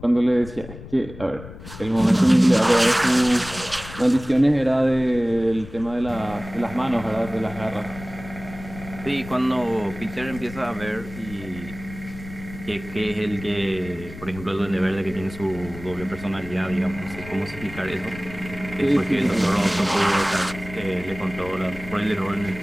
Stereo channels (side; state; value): left; noise; rumble, 14 dB below the sound